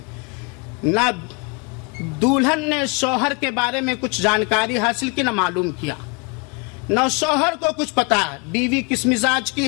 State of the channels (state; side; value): quieter; right; 31.2 dB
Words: نہ دلہن نے شوہر کے بارے میں کچھ جانکاری حاصل کی, نہ معلوم کیا, نہ شوہر کو کچھ پتا ہے بیوی کس مزاج